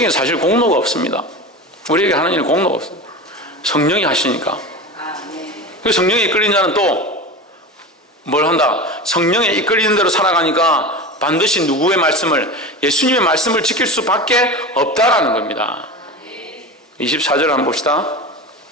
사실 공로가 없습니다. 우리에게 하는 일은 공로가 없습니다. 성령이 하시니까. 그 성령이 이끌린 자는 또 뭘 한다? 성령에 이끌리는 대로 살아가니까 반드시 누구의 말씀을, 예수님의 말씀을 지킬 수밖에 없다라는 겁니다. 24절 한번 봅시다.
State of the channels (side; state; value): both; normal; correlation 0.28